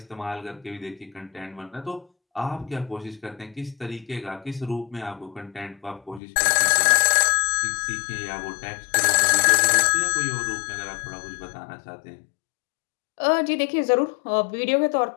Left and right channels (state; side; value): drops out; right; at 6.2 s